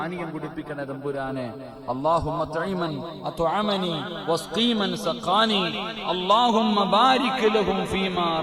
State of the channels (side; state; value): both; identical; correlation 1.00